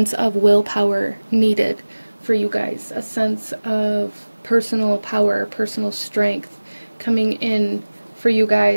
of willpower needed for you guys, a sense of personal power, personal strength coming in for you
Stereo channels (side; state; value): both; inverted; correlation -1.00